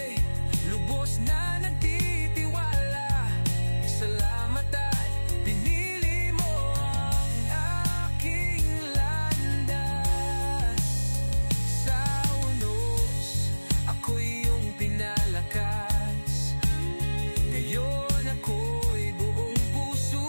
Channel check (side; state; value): both; inverted; correlation -1.00